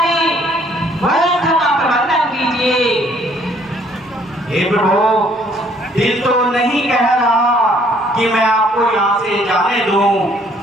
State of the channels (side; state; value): both; normal; correlation 0.63